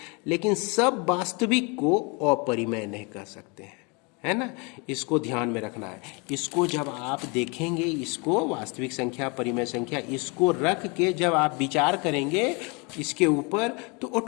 लेकिन सब वास्तविक को अपरिमेय नहीं कह सकते हैं, है ना? इसको ध्यान में रखना है। इसको जब आप देखेंगे, इसको वास्तविक संख्या, परिमेय संख्या, इसको रख के जब आप विचार करेंगे इसके ऊपर, तो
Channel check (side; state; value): right; quieter; 30.6 dB